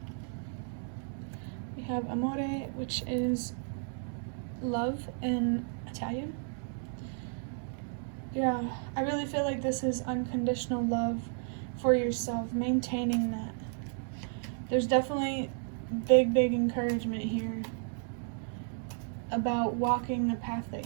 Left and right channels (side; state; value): left; silent; 56 dB below the other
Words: We have amore, which is love in Italian. Yeah, I really feel like this is unconditional love for yourself, maintaining that. There's definitely big encouragement here about walking the path that